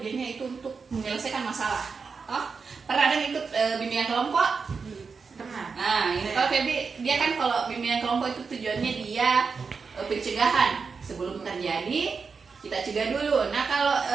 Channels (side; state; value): left; quieter; 5.2 dB